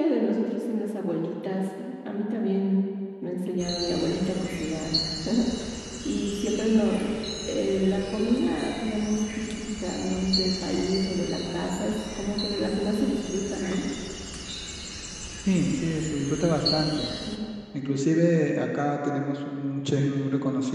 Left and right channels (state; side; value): identical; both; correlation 1.00